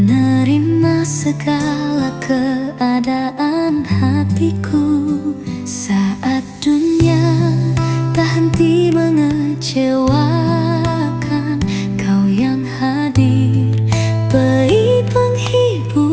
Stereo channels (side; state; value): both; identical; correlation 1.00